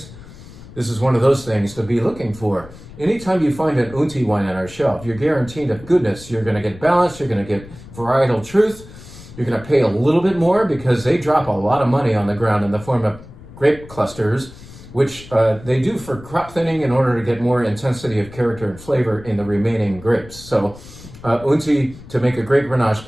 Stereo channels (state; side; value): noise; left; rumble, 18 dB below the sound